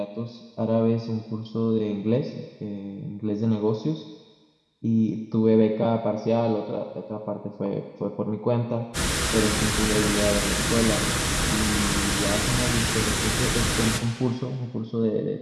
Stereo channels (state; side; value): identical; both; correlation 1.00